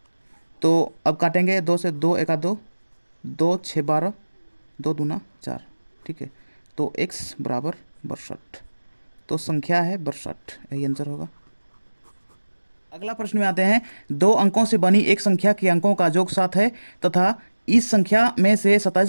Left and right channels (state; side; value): inverted; both; correlation -1.00